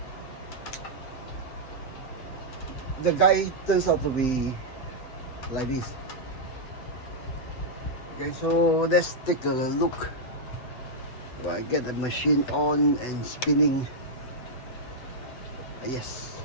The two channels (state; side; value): late; right; 7.9 ms